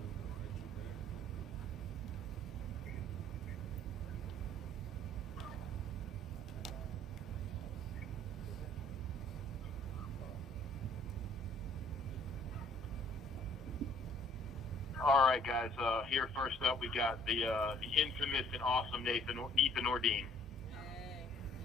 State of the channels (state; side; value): normal; both; correlation 0.58